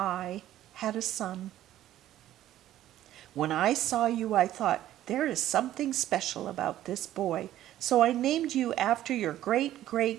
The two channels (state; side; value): quieter; left; 13.1 dB